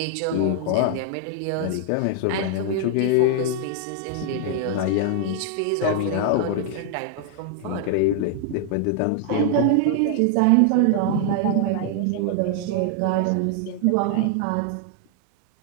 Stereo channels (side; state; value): both; different; correlation 0.00